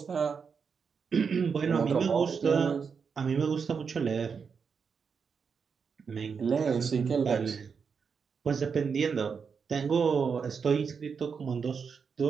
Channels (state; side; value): quieter; left; 5.9 dB